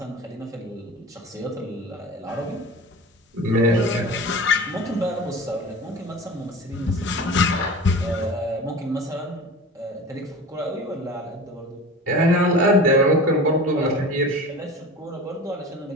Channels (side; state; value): both; normal; correlation 0.35